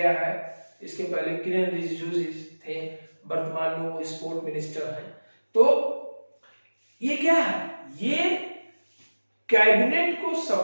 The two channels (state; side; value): inverted; both; correlation -1.00